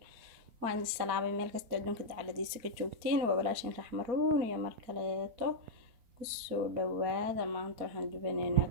وعند السلام ميل كستعدون كده على دي سكتشوكتين وبلاشين رحمرون يا مركلاتو كسو دوادا ما أنتو حندبنينا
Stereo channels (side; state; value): left; late; 4.0 ms